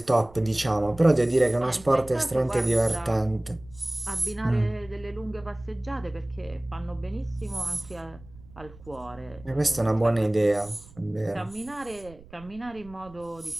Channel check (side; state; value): right; noise; rumble, 22 dB below the sound